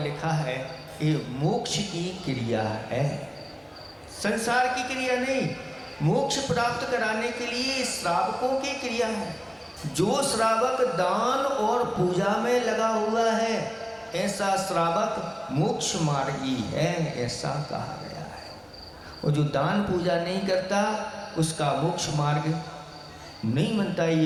लिखा है ये मोक्ष की क्रिया है, संसार की क्रिया नहीं। मोक्ष प्राप्त कराने के लिए श्रावकों की क्रिया है। जो श्रावक दान और पूजा में लगा हुआ है ऐसा श्रावक मोक्ष मार्गी है, ऐसा कहा गया है। और जो दान पूजा नहीं करता उसका मोक्ष मार्ग नहीं बनता।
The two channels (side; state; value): both; identical; correlation 1.00